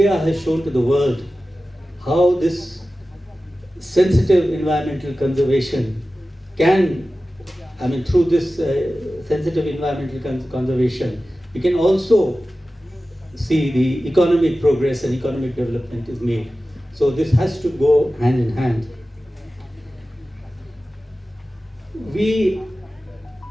has shown to the world how this sensitive environmental conservation can, through this sensitive environmental conservation, we can also see the economic progress and economic development is made. So this has to go hand in hand.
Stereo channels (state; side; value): normal; both; correlation 0.95